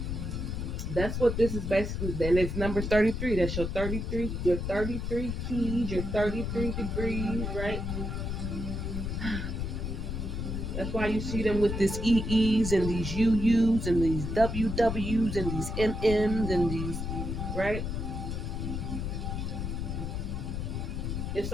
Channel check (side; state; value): left; noise; rumble, 3 dB below the sound